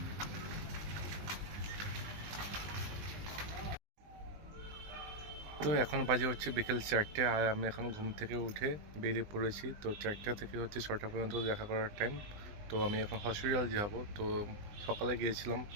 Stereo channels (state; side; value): late; left; 20 ms